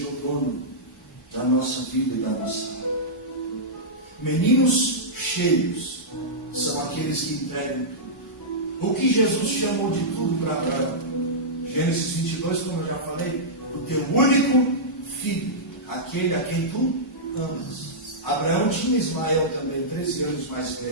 o dono da nossa vida e da nossa alma. Meninos cheios são aqueles que entregam tudo. O que Jesus chamou de tudo para Abraão? Gênesis 22, como eu já falei, o teu único filho, aquele a quem tu amas. Abraão tinha Ismael também, 13 anos mais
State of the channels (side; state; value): both; normal; correlation -0.13